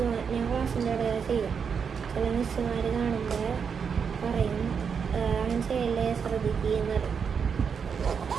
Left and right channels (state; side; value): quieter; left; 6.5 dB